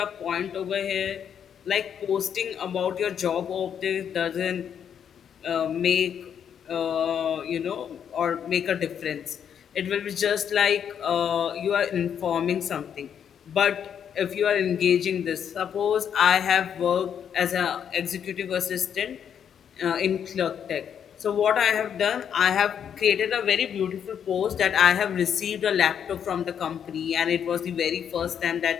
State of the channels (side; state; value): right; quieter; 8.3 dB